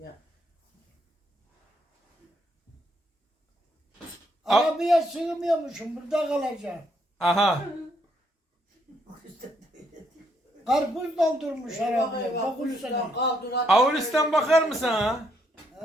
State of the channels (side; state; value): both; normal; correlation 0.73